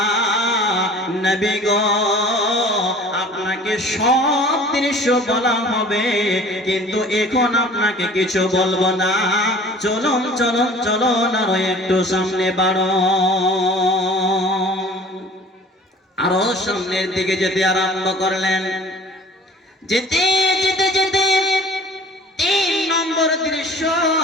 নবী গো, আপনাকে সব দৃশ্য বলা হবে, কিন্তু এখন আপনাকে কিছু বলবো না। চলুন চলুন চলুন, আরো একটু সামনে বাড়ো। আরো সামনের দিকে যেতে আরম্ভ করলেন। যেতে যেতে যেতে 3 নম্বর দৃশ্য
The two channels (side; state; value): both; normal; correlation 0.46